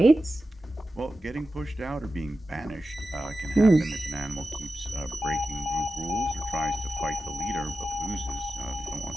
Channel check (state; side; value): normal; both; correlation 0.93